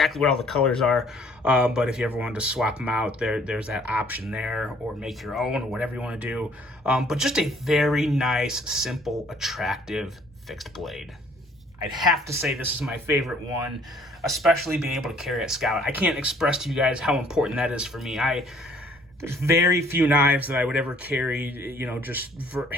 what all the colors are, but if you ever wanted to swap them out, there's that option there, or make your own, or whatever you want to do. But just a very nice, simple, attractive fixed blade. I'd have to say this is my favorite one, especially being able to carry at Scout. I can't express to you guys how important that is for me. There's very few knives that I would ever carry, just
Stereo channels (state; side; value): normal; both; correlation 0.58